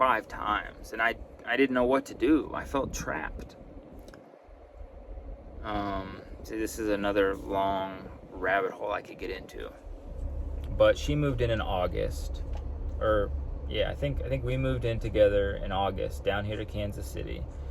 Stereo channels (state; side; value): identical; both; correlation 1.00